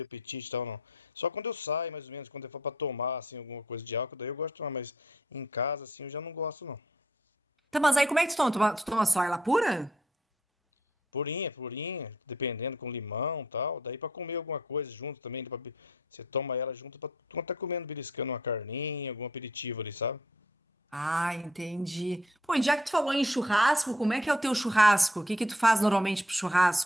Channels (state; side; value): normal; both; correlation 0.64